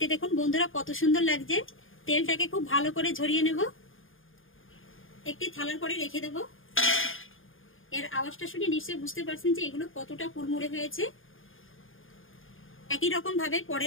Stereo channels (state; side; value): late; right; 0.59 ms